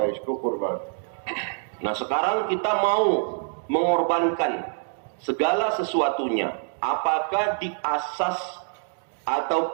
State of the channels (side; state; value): left; silent; 61 dB below the other